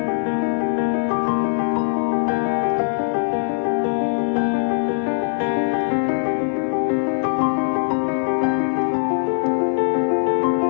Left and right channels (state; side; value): silent; right; 61 dB below the other